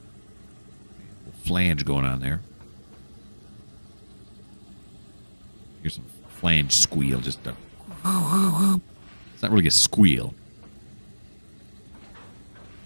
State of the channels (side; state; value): both; inverted; correlation -1.00